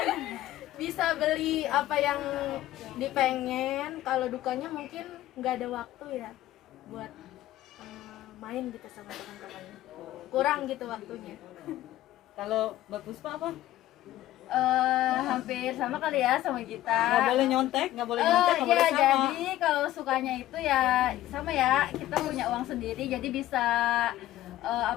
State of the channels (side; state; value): right; quieter; 14.5 dB